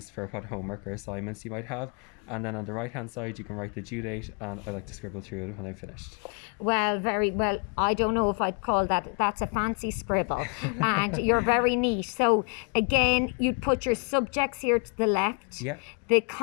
for what homework or assignments you might have, and then on the right hand side you can write the due date, and I like to scribble through it when I'm finished. Well, very well. I don't know if I'd call that's a fancy scribble. And you're very neat. So again, you'd put your subjects here to the left. Yeah. the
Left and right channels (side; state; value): right; quieter; 37.6 dB